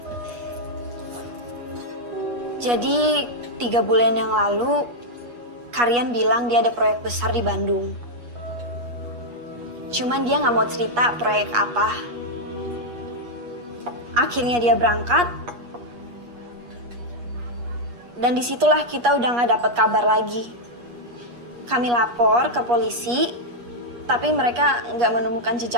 Jadi 3 bulan yang lalu, Karian bilang dia ada proyek besar di Bandung. Cuman dia nggak mau cerita proyek apa. Akhirnya dia berangkat. Dan disitulah kita udah nggak dapat kabar lagi. Kami lapor ke polisi, tapi mereka nggak menemukan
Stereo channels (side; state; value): left; late; 8.4 ms